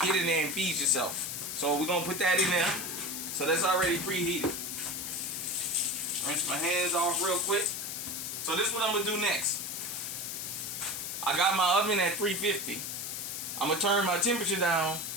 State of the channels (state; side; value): noise; left; hiss, 5 dB below the sound